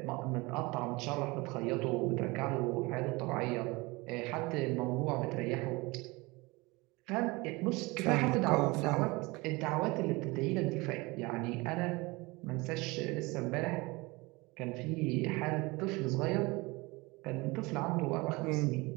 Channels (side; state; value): left; quieter; 23.9 dB